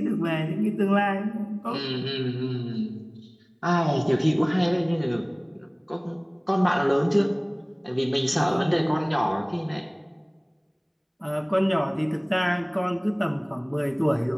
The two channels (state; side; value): identical; both; correlation 1.00